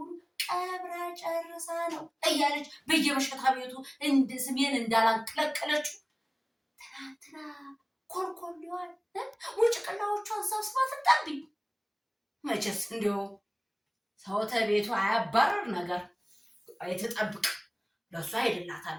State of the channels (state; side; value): identical; both; correlation 1.00